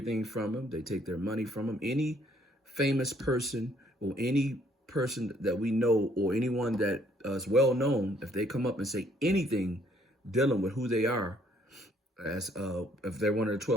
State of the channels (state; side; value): normal; both; correlation 0.65